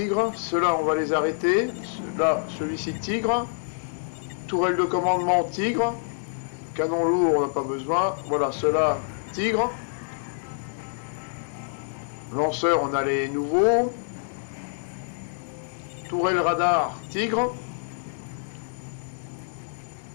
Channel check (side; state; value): right; silent; digital silence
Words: ceux-là on va les arrêter. Là, celui-ci Tigre. Tourelle de commandement Tigre. Canon lourd, on n'a pas besoin. Voilà, ceux-là Tigre. Lanceur, on a les nouveaux. Tourelle radar Tigre.